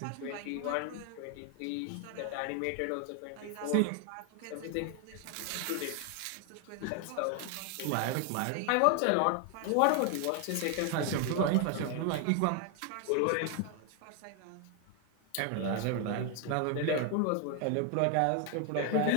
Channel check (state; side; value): different; both; correlation 0.01